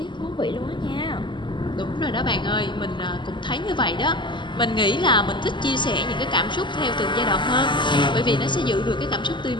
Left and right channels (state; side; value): late; right; 0.23 ms